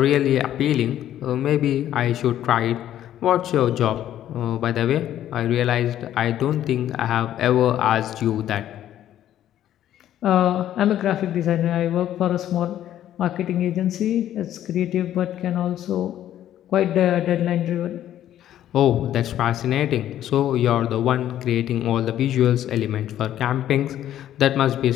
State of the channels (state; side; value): quieter; right; 11.7 dB